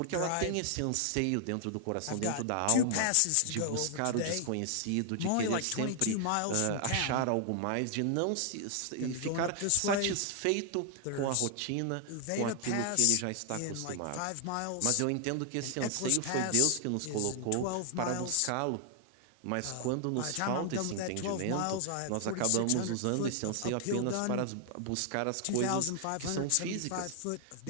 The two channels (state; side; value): different; both; correlation 0.00